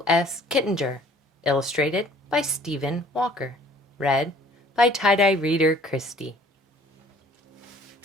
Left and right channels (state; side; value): normal; both; correlation 0.55